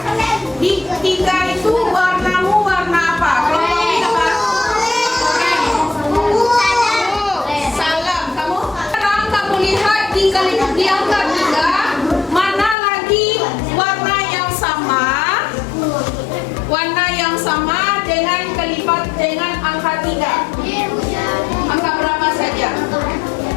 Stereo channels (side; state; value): right; drops out; at 12.8 s